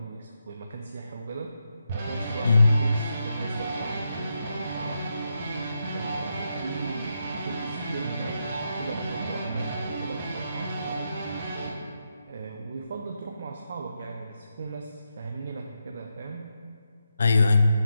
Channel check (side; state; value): both; inverted; correlation -0.84